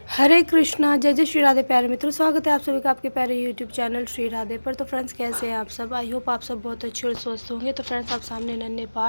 हरे कृष्णा, जय जय श्री राधे। प्यारे मित्रों, स्वागत है आप सभी का आपके प्यारे यूट्यूब चैनल श्री राधे पर। तो फ्रेंड्स, कैसे हैं आप सब? आई होप आप सब बहुत अच्छे और स्वस्थ होंगे। तो फ्रेंड्स, आप सामने नन्हे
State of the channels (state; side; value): inverted; both; correlation -1.00